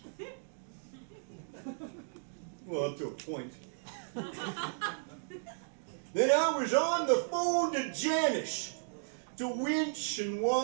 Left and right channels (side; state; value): left; silent; digital silence